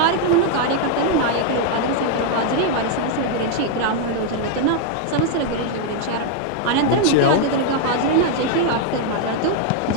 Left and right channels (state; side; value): different; both; correlation 0.00